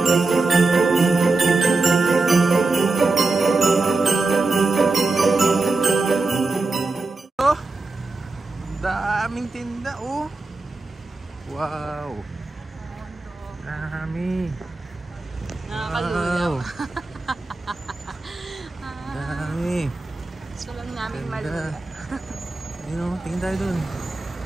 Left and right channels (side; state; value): left; quieter; 3.5 dB